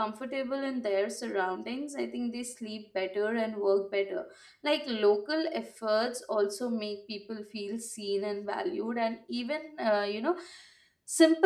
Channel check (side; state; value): both; identical; correlation 1.00